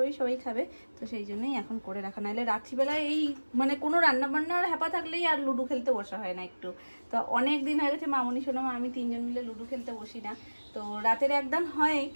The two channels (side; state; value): both; inverted; correlation -1.00